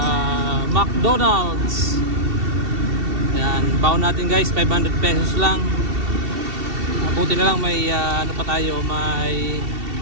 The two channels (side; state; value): left; late; 2.7 ms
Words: McDonald's. Ayan, baon natin guys, 500 pesos lang. Buti na lang may ano pa tayo, may